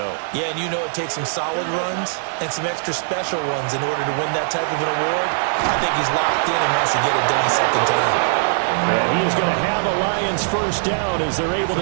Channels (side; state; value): left; silent; 61 dB below the other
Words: Yeah, and you know it takes some solid runs and some extra special ones in order to win that type of an award. I think he's locked in and wants to get it done a second time. And he is going to have a Lions first down as they're able